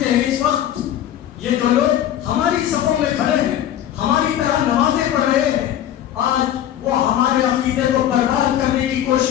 ہیں. اس وقت یہ جو لوگ ہماری صفوں میں کھڑے ہیں، ہماری طرح نمازیں پڑھ رہے ہیں، آج وہ ہمارے عقیدے کو برباد کرنے کی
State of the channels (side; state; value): right; quieter; 11.4 dB